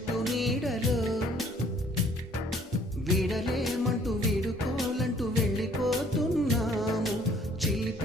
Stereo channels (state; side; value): normal; both; correlation 0.59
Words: నీడలో. వీడలేమంటూ వీడుకోలంటూ వెళ్ళిపోతున్నాము